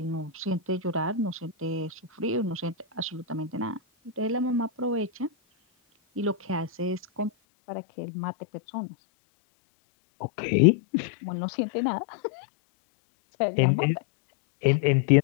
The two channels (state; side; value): drops out; right; at 7.3 s